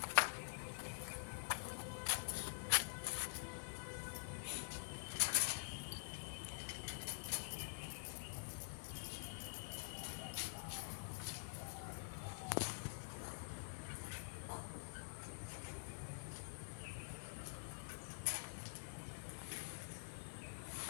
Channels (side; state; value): right; silent; digital silence